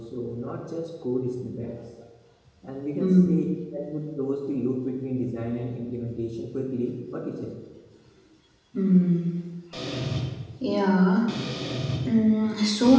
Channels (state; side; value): identical; both; correlation 1.00